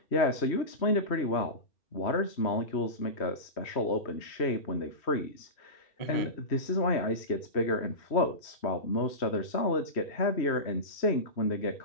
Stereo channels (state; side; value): late; right; 3.1 ms